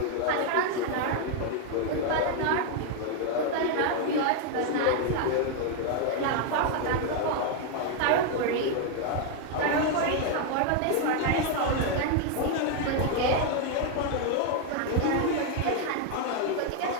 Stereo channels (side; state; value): both; different; correlation 0.01